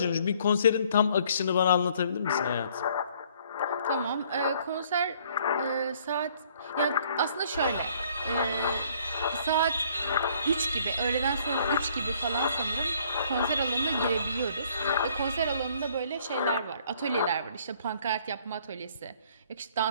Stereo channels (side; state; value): both; inverted; correlation -0.61